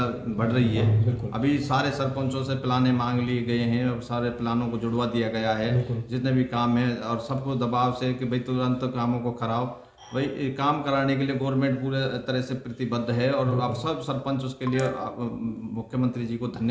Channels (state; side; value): identical; both; correlation 1.00